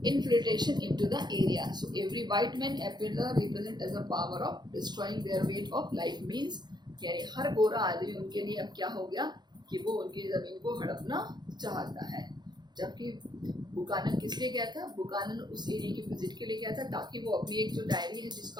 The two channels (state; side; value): late; left; 0.21 ms